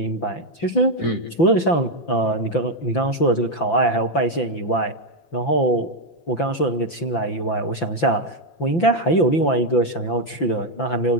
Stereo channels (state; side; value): late; right; 5.9 ms